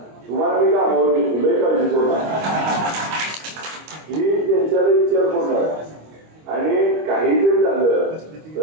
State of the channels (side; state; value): left; late; 25 ms